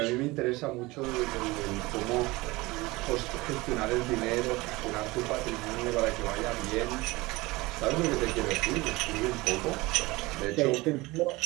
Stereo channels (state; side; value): quieter; left; 21.6 dB